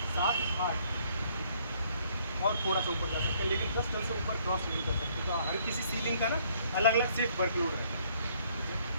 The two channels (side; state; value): both; inverted; correlation -0.64